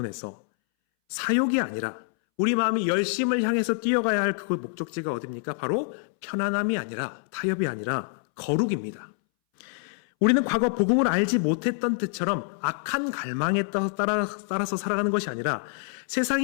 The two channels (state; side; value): silent; right; 61 dB below the other